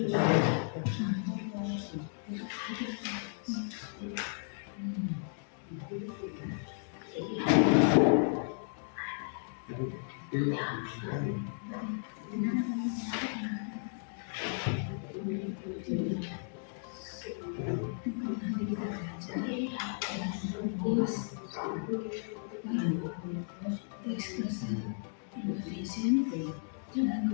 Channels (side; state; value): right; silent; digital silence